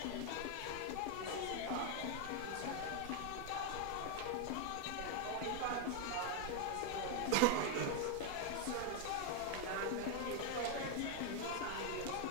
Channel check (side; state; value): both; different; correlation 0.01